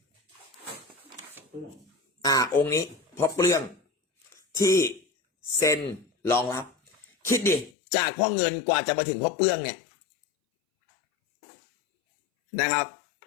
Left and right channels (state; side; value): drops out; right; at 7.7 s